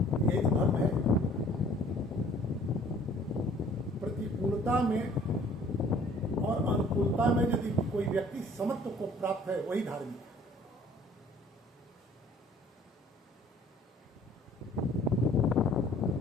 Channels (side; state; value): both; normal; correlation 0.55